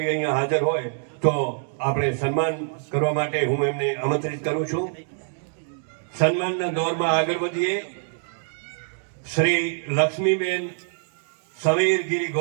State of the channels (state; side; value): silent; left; digital silence